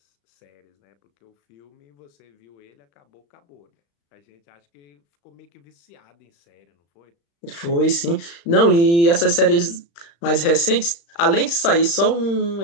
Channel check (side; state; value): right; late; 35 ms